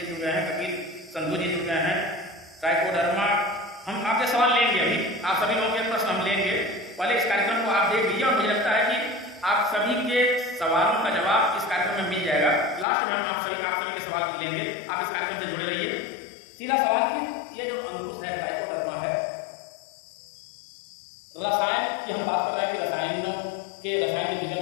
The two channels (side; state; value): right; drops out; at 12.9 s